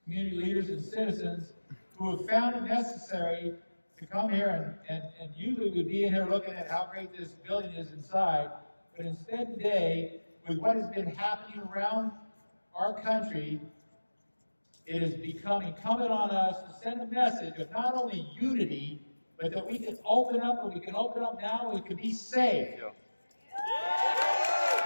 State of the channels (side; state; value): both; inverted; correlation -1.00